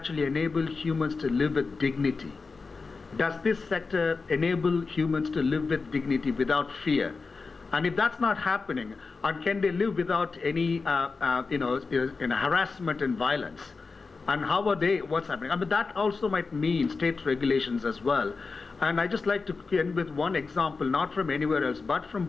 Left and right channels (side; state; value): right; quieter; 4.4 dB